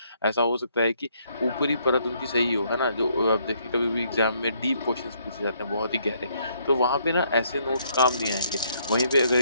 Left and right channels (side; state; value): both; inverted; correlation -0.69